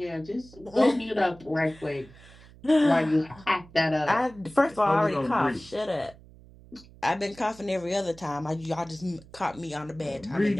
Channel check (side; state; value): right; noise; hum, 22 dB below the sound